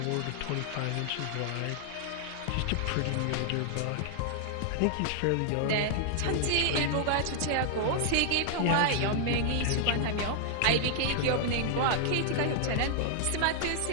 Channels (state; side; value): different; both; correlation -0.01